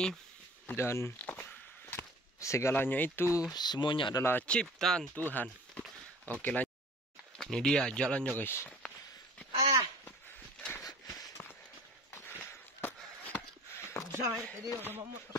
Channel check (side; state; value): both; normal; correlation 0.46